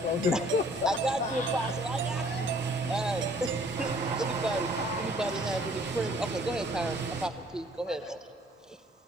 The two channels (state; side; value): normal; both; correlation 0.58